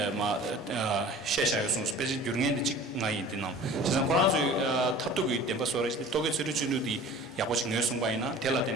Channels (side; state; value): both; normal; correlation 0.44